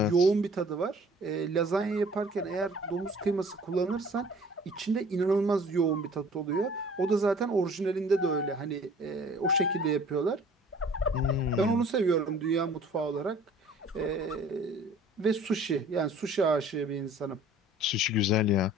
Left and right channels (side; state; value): both; normal; correlation 0.51